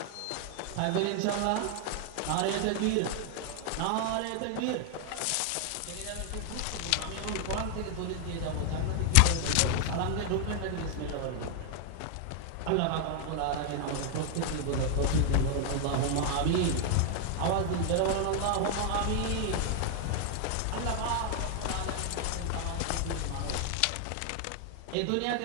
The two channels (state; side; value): different; both; correlation 0.00